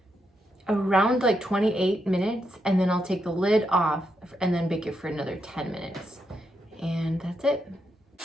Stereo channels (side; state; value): both; normal; correlation 0.82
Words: like 28 minutes. And then I'll take the lid off and then bake it for another 10 minutes. And that's it.